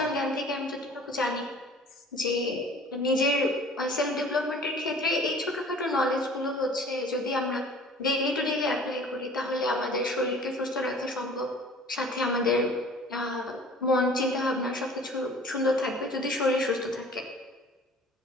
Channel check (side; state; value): both; normal; correlation 0.48